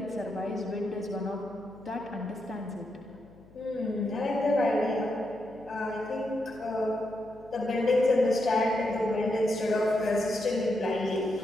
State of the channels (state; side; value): noise; left; hum, 24 dB below the sound